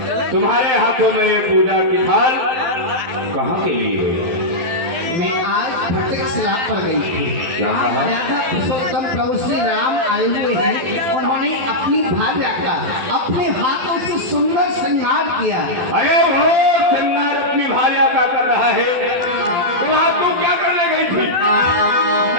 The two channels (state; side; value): late; left; 12 ms